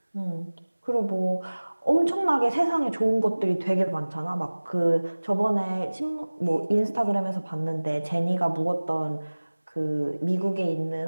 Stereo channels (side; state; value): both; inverted; correlation -1.00